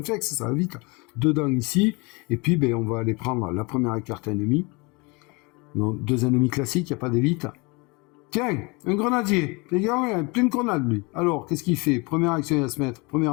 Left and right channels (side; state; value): right; quieter; 27.9 dB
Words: ça va vite. 2 dents ici, et puis ben, on va aller prendre la première carte ennemie. Donc 2 ennemis classiques, il n'y a pas d'élite. Tiens, un grenadier, les gars, il a plein de grenades lui. Alors, qu'est-ce qu'il fait? Première action, il va se mettre,